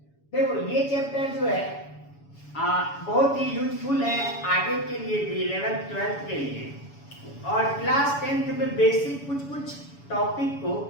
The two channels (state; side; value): late; right; 7.1 ms